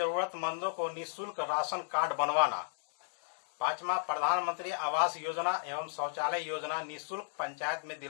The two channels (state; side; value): silent; right; 55 dB below the other